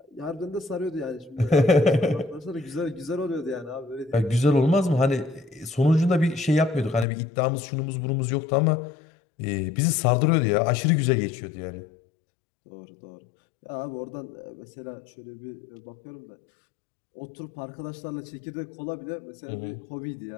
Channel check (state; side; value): drops out; right; at 7.1 s